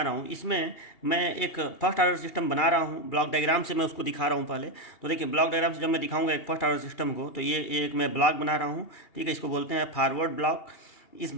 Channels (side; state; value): right; late; 2.8 ms